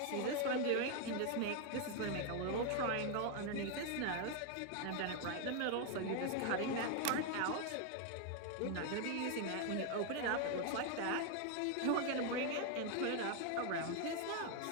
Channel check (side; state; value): both; different; correlation 0.01